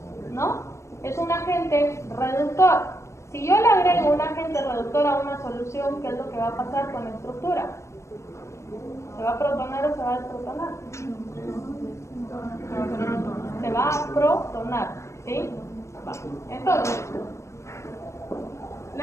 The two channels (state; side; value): late; right; 0.14 ms